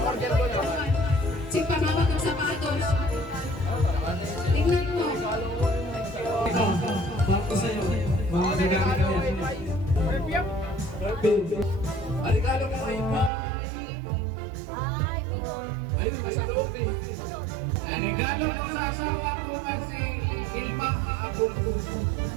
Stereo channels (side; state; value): left; drops out; at 13.3 s